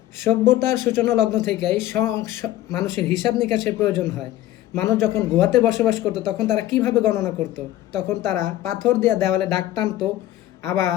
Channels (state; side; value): quieter; right; 14.3 dB